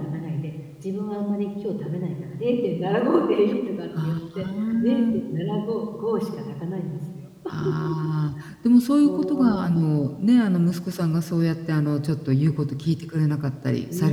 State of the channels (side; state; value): both; identical; correlation 1.00